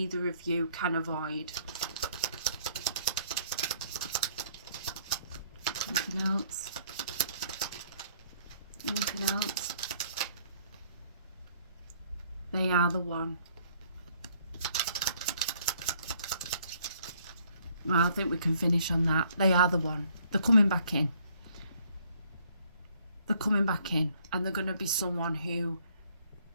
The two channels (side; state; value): both; inverted; correlation -0.63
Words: of you can avoid. Anything else? Anything else? They are the one. Well, I think we can finish on that. They are the one. They're coming back in. They're coming back in, and they're going to be someone who